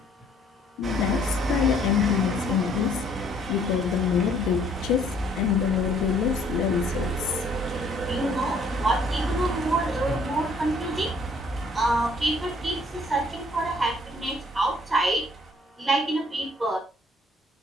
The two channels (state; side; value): normal; both; correlation 0.61